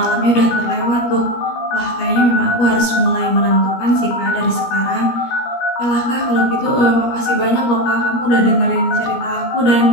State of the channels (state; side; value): late; right; 17 ms